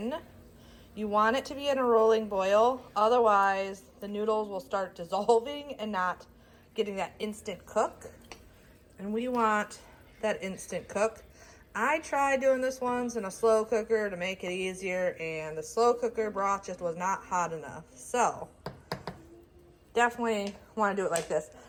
You want it to be in a rolling boil, otherwise the noodles will start dissolving and not getting that instant cook. And we want that instant cook. I tried doing this once in a slow cooker to make it easier, and the slow cooker broth just was not hot enough. So definitely want to do it like this.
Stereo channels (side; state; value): both; identical; correlation 1.00